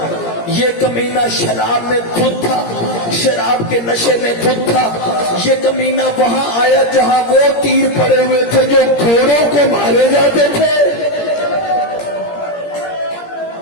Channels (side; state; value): right; late; 17 ms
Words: یہ کمینہ شراب میں دھت تھا، شراب کے نشے میں دھت تھا۔ یہ کمینہ وہاں آیا جہاں وہ تیر پڑے ہوئے تھے جو گھوڑوں کو مارے جاتے تھے۔